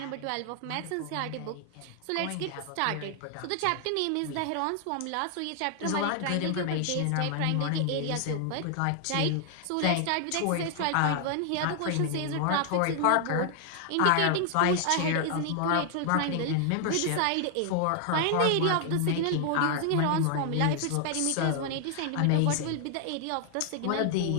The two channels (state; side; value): different; both; correlation 0.00